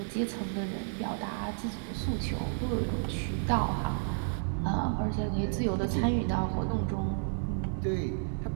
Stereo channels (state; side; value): silent; left; digital silence